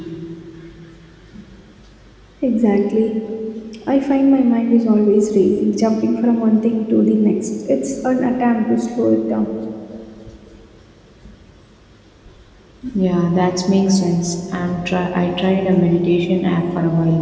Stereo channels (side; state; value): both; identical; correlation 1.00